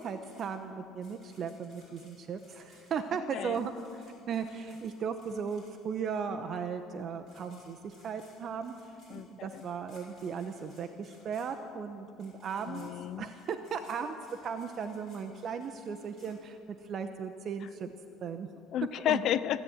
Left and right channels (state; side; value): normal; both; correlation 0.55